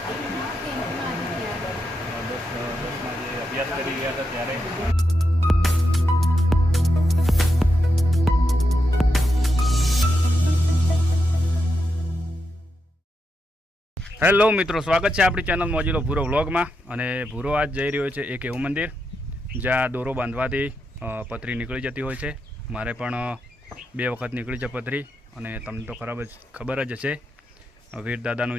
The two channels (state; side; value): normal; both; correlation 0.84